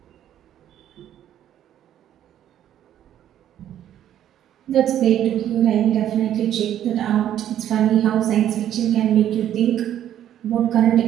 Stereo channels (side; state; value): left; quieter; 11.0 dB